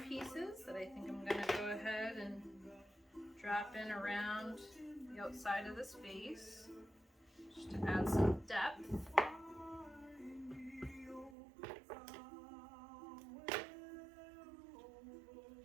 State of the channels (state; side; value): drops out; left; at 11.4 s